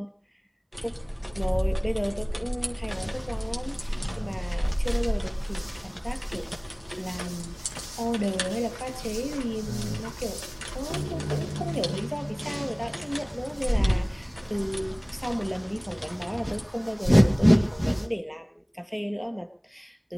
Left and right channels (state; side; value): identical; both; correlation 1.00